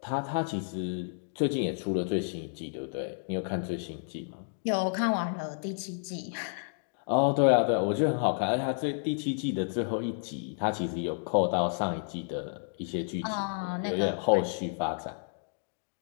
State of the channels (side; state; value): right; silent; digital silence